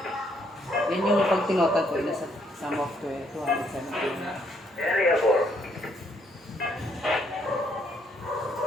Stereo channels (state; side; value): normal; both; correlation 0.70